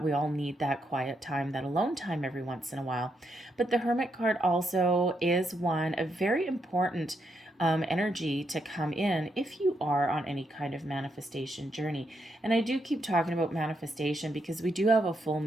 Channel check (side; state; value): both; normal; correlation 0.79